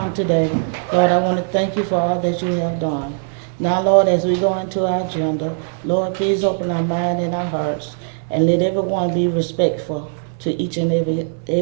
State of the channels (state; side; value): silent; left; digital silence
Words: today, Lord, I want to thank you for all that you have done. Now, Lord, as we go into our agenda, Lord, please open our mind and our hearts, and let everyone be respectful to each and